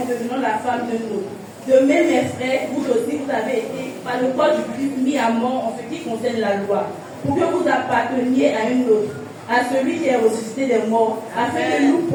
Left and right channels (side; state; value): both; identical; correlation 1.00